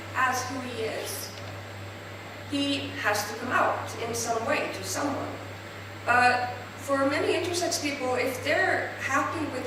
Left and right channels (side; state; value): both; identical; correlation 1.00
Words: as who he is, he has to come out in some way to someone. But for many intersex people, if they're happy with